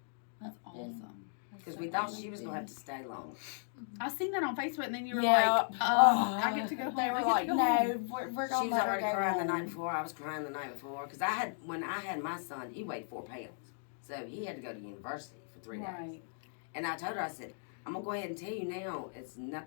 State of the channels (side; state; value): right; silent; digital silence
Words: that's awesome. Because we thought she was going to have to stay long. I seen that on Facebook, and then you were yeah. like, I get to go home. They I were get to like, go no, home." we're She going to was let her already go crying the night home. before. I was crying the night before. Because when I had my son, he weighed 4 pounds. So he had to go to university for 3 days. Right. And I told her, I said, I'm going to go ahead and tell you now, it's